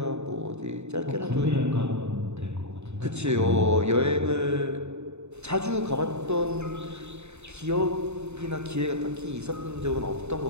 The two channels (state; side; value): late; left; 0.81 ms